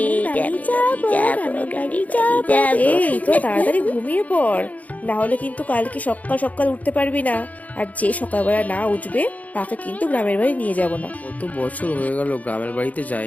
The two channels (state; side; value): late; right; 0.074 ms